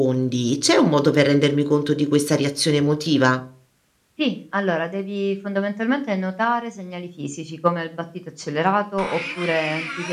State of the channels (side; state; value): both; identical; correlation 1.00